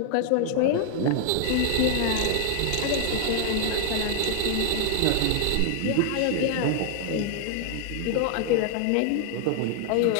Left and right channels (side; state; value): both; different; correlation 0.00